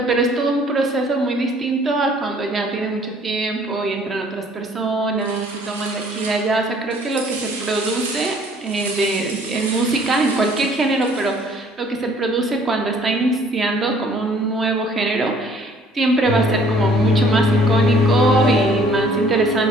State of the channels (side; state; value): both; normal; correlation 0.58